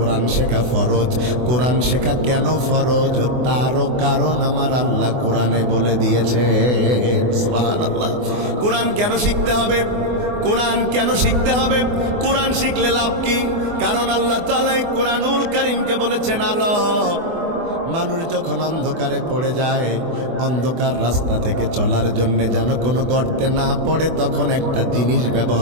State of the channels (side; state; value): left; late; 24 ms